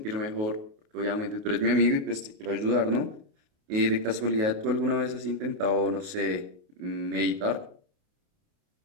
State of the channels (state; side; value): late; left; 28 ms